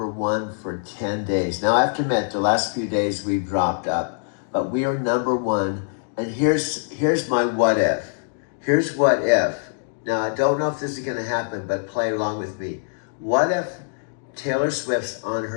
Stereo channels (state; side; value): silent; right; digital silence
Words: for 10 days. Now, I have to admit, the last few days we've dropped up, but we are #1. And here's my what if. Here's what if. Now, I don't know if this is going to happen, but play along with me. What if Taylor Swift's on